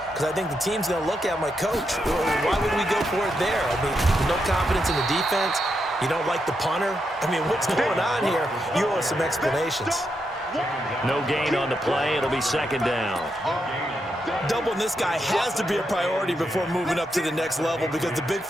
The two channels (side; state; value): both; normal; correlation 0.83